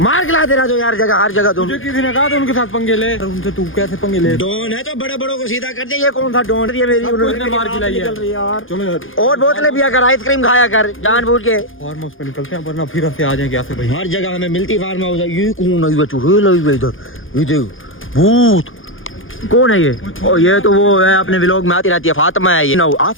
के लाते रहो यार जगह हर जगह तुम। मुझे किसी ने कहा था उनके साथ पंगे ले। उनसे तू कैसे पंगे ले? डॉन है तो बड़े बड़ों को सीधा कर दे। ये कौन सा डॉन? ये मेरी उसने मार खिलाई है। यार चलो यार और बोतलें पिया कर आइसक्रीम खाया कर जानबूझ के। फार्म हाउस पे निकलते हैं वरना फिर से आ जाएंगे ऐसे भाई। हर जगह हमें मिलती फार्म हाउस है। ये कौन है? ये चुड़ैल है इधर। ये देख भूत कौन है ये? ओ ये तो वो है अपने व्लॉग में आती रहती है फातिमा है ये।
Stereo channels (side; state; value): right; late; 0.58 ms